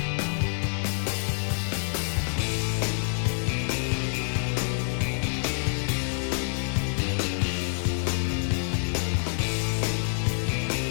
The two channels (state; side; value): silent; right; 60 dB below the other